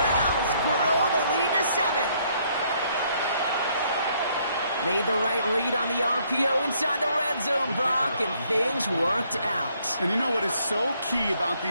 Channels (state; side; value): inverted; both; correlation -0.68